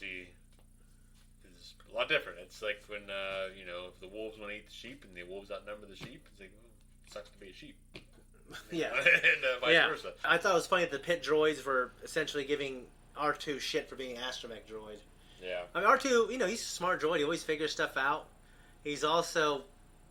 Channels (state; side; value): identical; both; correlation 1.00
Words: is a lot different. It's like when, if the wolves want to eat the sheep and the wolves outnumber the sheep, it's like, it sucks to be a sheep. Yeah. And vice versa. I thought it was funny that the pit droids were essentially giving R2 shit for being an astromech droid. Yeah. I mean, R2, he's a smart droid. He always figures stuff out. He's